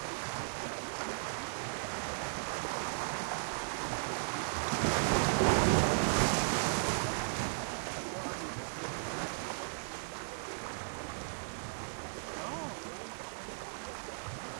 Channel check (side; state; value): left; silent; digital silence